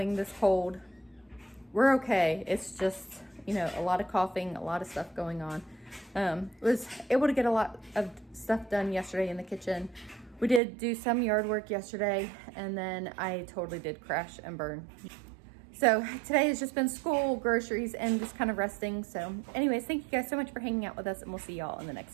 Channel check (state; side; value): drops out; left; at 10.6 s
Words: this cold. We're okay. It's just, you know, a lot of coughing, a lot of stuff going on. Was able to get a lot of stuff done yesterday in the kitchen. We did do some yard work yesterday, and then I totally did crash and burn. So today has just been school, groceries, and just kind of resting. So anyways, thank you guys so much for hanging out with us, and we'll see y'all in the